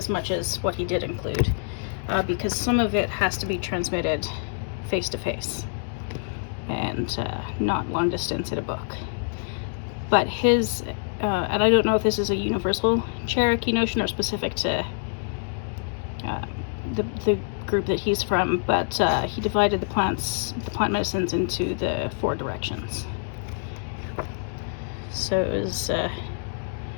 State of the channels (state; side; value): silent; right; digital silence